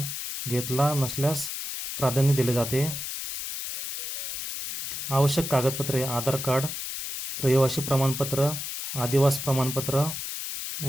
घेतला नसल्यास प्राधान्य दिले जाते. आवश्यक कागदपत्रे: आधार कार्ड, रहिवासी प्रमाणपत्र, आदिवास प्रमाणपत्र,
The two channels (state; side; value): noise; left; hiss, 6 dB below the sound